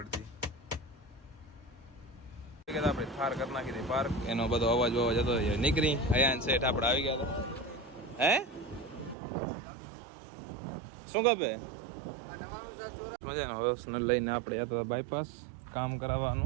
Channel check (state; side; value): drops out; left; at 9.2 s